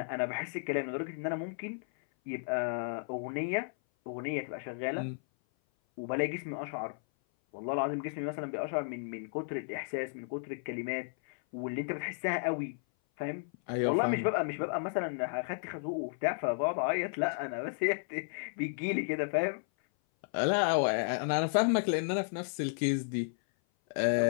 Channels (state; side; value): silent; right; 56 dB below the other